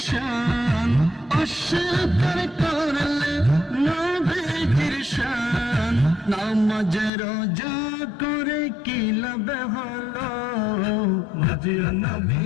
শান অস্বীকার করলে নবীর শান নামাজ রোজা করে কি লাভ হলো মাঝে নবী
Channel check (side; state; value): right; drops out; at 7.1 s